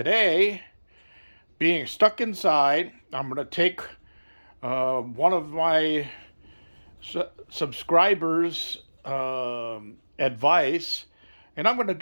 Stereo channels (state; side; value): inverted; both; correlation -1.00